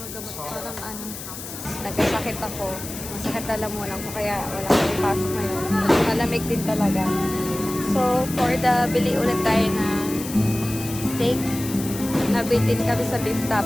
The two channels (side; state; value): left; noise; hiss, 10 dB below the sound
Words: gamot. Parang ano, nagkasakit ako. Masakit lalamunan ko kaya wala akong ipasok ngayon. Malamig din talaga. So, for the bili ulit tayo na steak. Nabitin kami sa beef